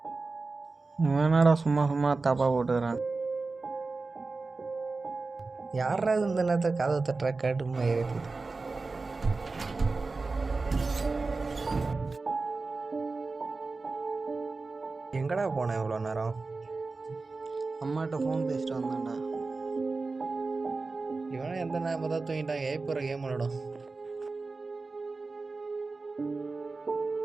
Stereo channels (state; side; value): quieter; left; 3.8 dB